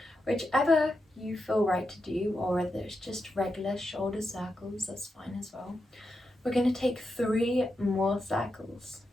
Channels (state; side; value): normal; both; correlation 0.87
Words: Whichever you feel right to do, or whether it's just regular shoulder circles, that's fine as well. We're going to take 3 more circles.